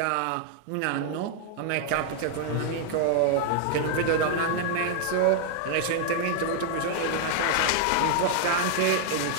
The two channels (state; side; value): different; both; correlation 0.00